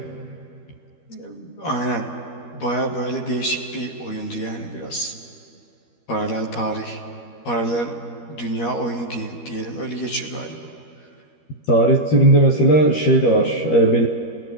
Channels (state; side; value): late; right; 13 ms